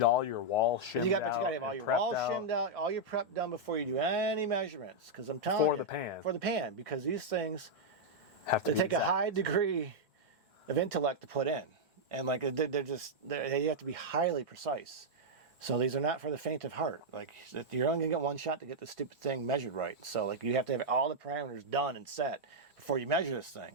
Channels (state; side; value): normal; both; correlation -0.04